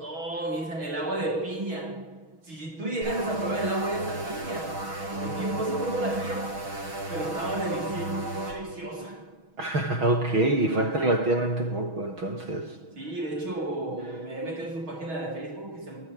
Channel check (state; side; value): late; left; 6.2 ms